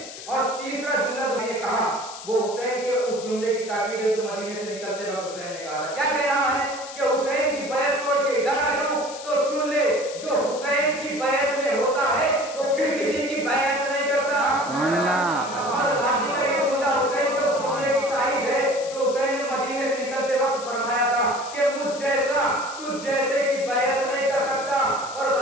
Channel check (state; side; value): noise; left; hiss, 13 dB below the sound